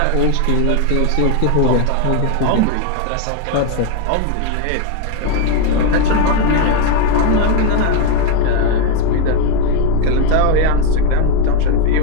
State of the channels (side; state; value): both; different; correlation 0.02